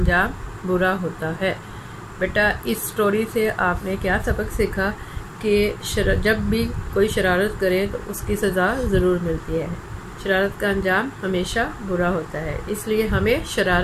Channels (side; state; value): both; identical; correlation 1.00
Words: बुरा होता है। बेटा, इस स्टोरी से आपने क्या सबक सीखा कि जब भी कोई शरारत करे तो उसकी सज़ा ज़रूर मिलती है। शरारत का अंजाम हमेशा बुरा होता है, इसलिए हमें